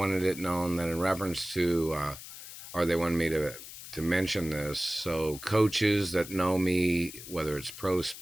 it known that in reference to, or they wanted me to mention this. So coaches that know me, whether it's pro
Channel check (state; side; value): noise; left; hiss, 13 dB below the sound